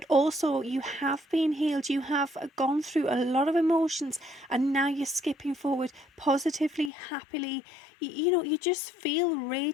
also you have been healed. You have gone through a lot of emotions, and now you're skipping forward positively, happily. You just feel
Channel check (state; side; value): drops out; right; at 6.9 s